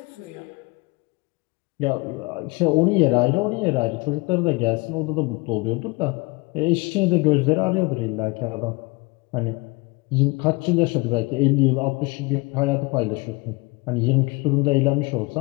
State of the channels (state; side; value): quieter; right; 25.8 dB